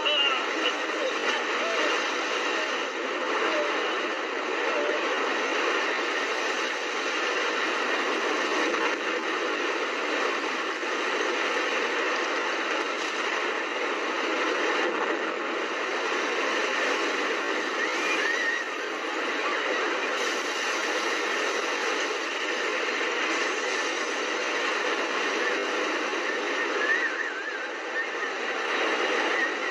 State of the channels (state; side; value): identical; both; correlation 1.00